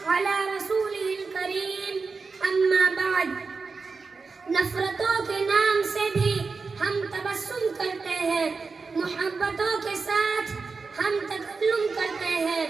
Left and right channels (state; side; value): quieter; left; 4.5 dB